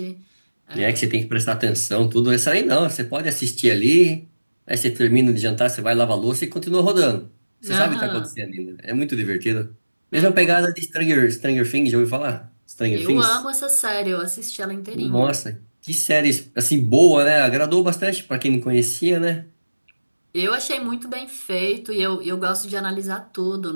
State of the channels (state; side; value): inverted; both; correlation -1.00